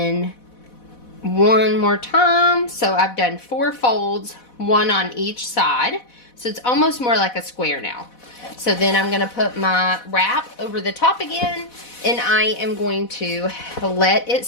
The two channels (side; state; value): right; late; 4.1 ms